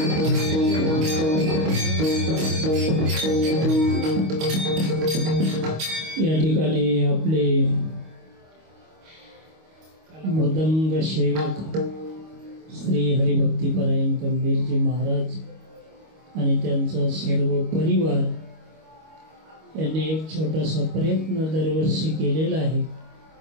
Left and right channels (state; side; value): late; left; 25 ms